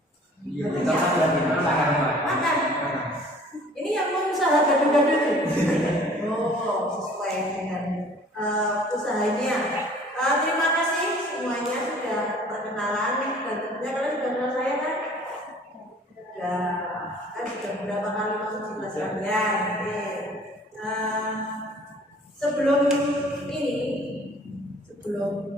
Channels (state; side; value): normal; both; correlation 0.52